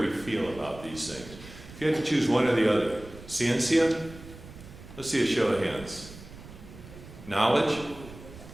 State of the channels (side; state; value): right; noise; rumble, 17 dB below the sound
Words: we feel about these things. If you had to choose one or the other, Ciencia, let's see a show of hands. Knowledge,